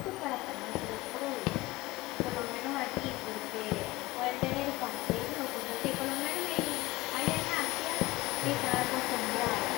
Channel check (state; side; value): quieter; right; 19.9 dB